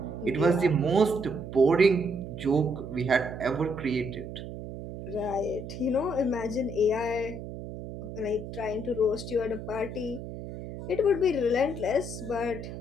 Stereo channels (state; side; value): noise; right; hum, 9 dB below the sound